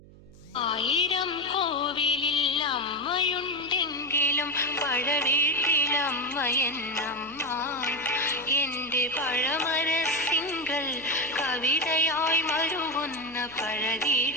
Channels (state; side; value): noise; right; hum, 22 dB below the sound